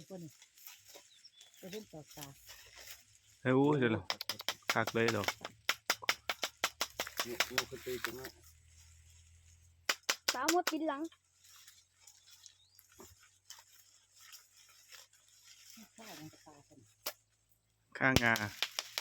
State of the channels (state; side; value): identical; both; correlation 1.00